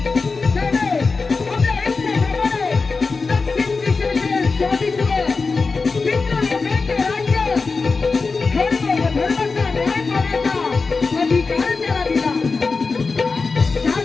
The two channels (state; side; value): quieter; right; 4.3 dB